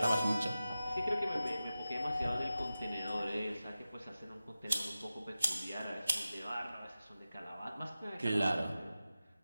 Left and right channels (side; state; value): both; inverted; correlation -0.94